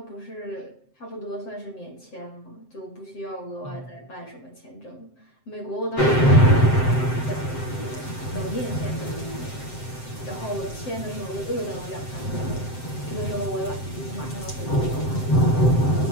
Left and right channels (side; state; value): right; late; 7.7 ms